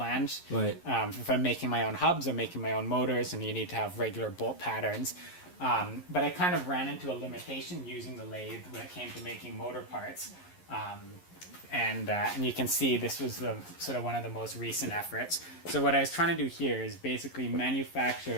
Right. If I'm making my own hubs or making my own motors, and you need to have regular bolt patterns. But I kind of ran into a limitation using the lathe when it came to making motor parts. And you can see this was sort of one of the most recent efforts. So what I was trying to do here is basically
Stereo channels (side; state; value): right; late; 11 ms